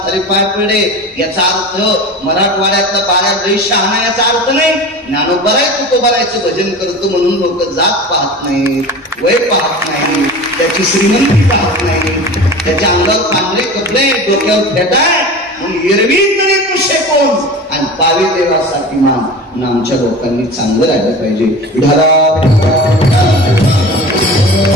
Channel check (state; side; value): normal; both; correlation 0.34